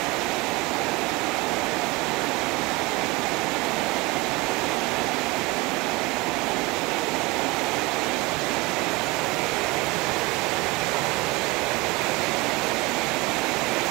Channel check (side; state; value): left; quieter; 23.6 dB